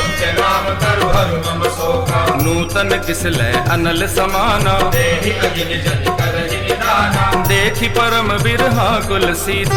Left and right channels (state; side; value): identical; both; correlation 1.00